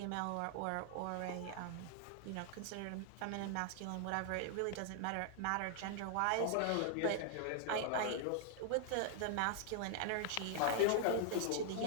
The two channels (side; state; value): both; different; correlation 0.00